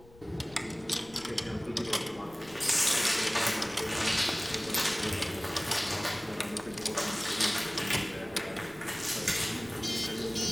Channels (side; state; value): left; noise; rumble, 23 dB below the sound